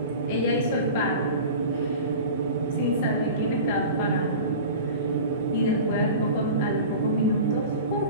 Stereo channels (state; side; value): inverted; both; correlation -0.35